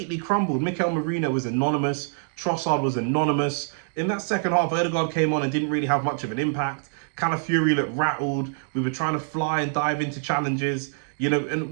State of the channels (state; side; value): silent; left; digital silence